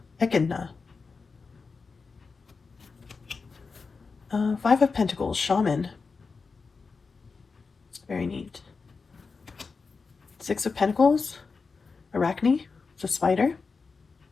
Five of Pentacles, Shaman. Very neat. Six of Pentacles, Arachne. It's a spider.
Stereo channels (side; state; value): right; quieter; 4.6 dB